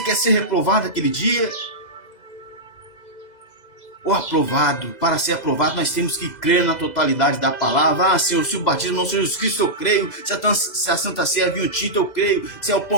quer ser reprovado aquele dia? Ou aprovado? Para ser aprovado, nós temos que crer na totalidade da palavra. Ah, Senhor, se o batismo não seja Jesus Cristo, eu creio. Se a Santa Ceia é vinho tinto, eu creio. Se é o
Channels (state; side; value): late; right; 2.0 ms